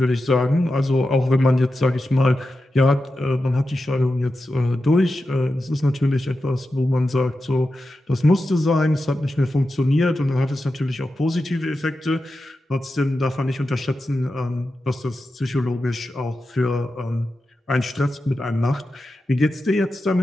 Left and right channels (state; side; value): normal; both; correlation 0.91